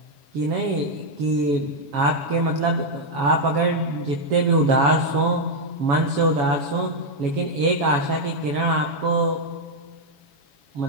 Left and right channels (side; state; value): left; late; 7.1 ms